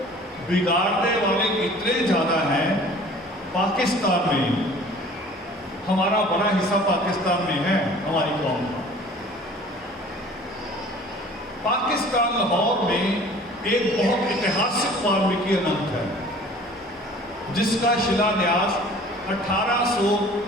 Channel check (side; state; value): both; normal; correlation 0.48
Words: बिगाड़ने वाले इतने ज्यादा हैं। पाकिस्तान में, हमारा बड़ा हिस्सा पाकिस्तान में है, हमारी कौम का। पाकिस्तान लाहौर में एक बहुत ऐतिहासिक वाल्मीकि अनंत है, जिसका शिलान्यास